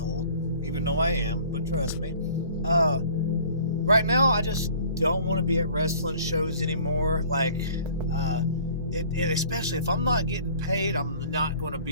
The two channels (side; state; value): both; inverted; correlation -0.51